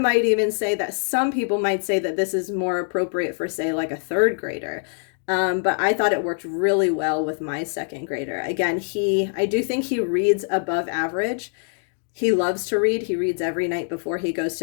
even say that some people might say that this is more appropriate for, say, like a third grader. But I thought it worked really well with my second grader. Again, I do think he reads above average. He loves to read. He reads every night before he goes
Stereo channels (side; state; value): right; silent; 63 dB below the other